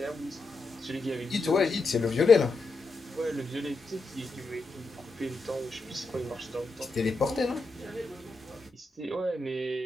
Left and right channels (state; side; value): quieter; right; 3.3 dB